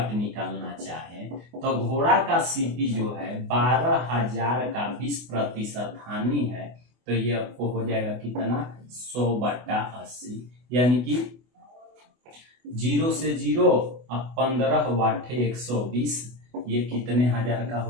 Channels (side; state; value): left; late; 24 ms